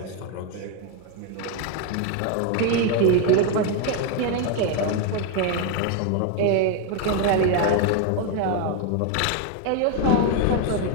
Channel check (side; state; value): both; different; correlation 0.01